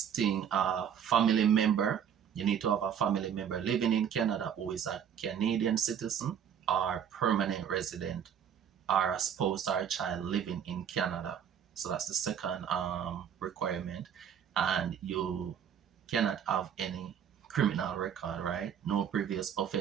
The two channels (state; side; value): quieter; left; 8.5 dB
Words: thing, family member. You need to have a family member living in Canada who is a Canadian citizen or permanent resident, or a spouse or a child living in Canada. So that's the second requirement. And you cannot have any criminal record, right? No previous